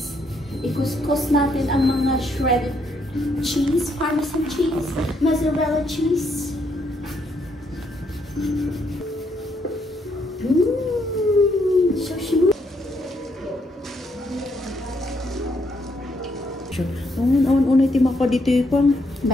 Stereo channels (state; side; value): normal; both; correlation 0.74